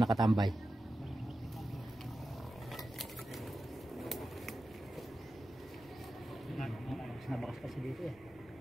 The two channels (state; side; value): noise; right; rumble, 26 dB below the sound